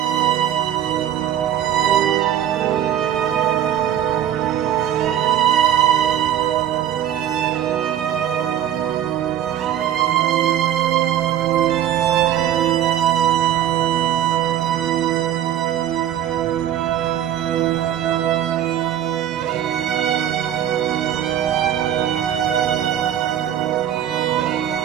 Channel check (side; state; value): left; quieter; 11.0 dB